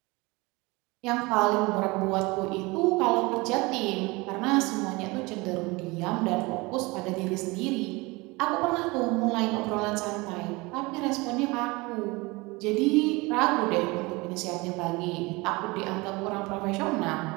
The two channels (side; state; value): left; quieter; 24.1 dB